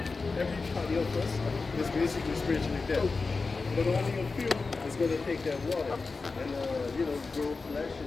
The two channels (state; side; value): quieter; right; 4.1 dB